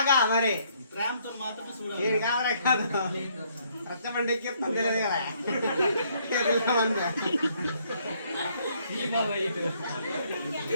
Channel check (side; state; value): both; inverted; correlation -0.68